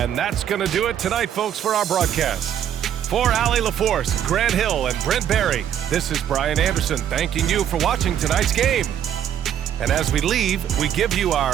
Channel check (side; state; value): left; quieter; 9.9 dB